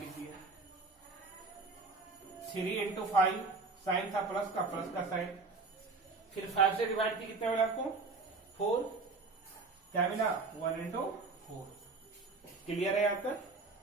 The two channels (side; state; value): left; quieter; 3.9 dB